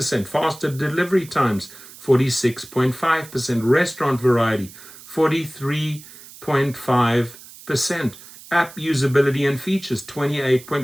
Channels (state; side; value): noise; right; hiss, 19 dB below the sound